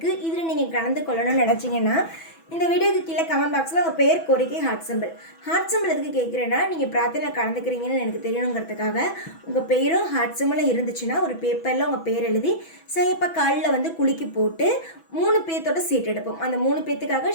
இதில் நீங்கள் கலந்து கொள்ளணும்னு நினச்சிங்கன்னா இந்த வீடியோக்கு கீழே கமெண்ட் பாக்ஸில் உங்கள் பேர், கோரிக்கை, ஹார்ட் சிம்பிள் எதுக்கு கேட்குறேன்னா, நீங்கள் பிரார்த்தனையில் கலந்துக்கிறீங்கன்னு எனக்கு தெரியணுங்கிறதுக்காக உங்கள் பேரும் ஹார்ட் சிம்பிளும் இருந்துச்சுன்னா ஒரு பேப்பரில் உங்கள் பேர் எழுதி சாயப்பா காலில் குலுக்கி போட்டு 3 பேர்த்தோட சீட் எடுப்போம். அந்த 3 பேர்த்துக்காக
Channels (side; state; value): right; late; 6.1 ms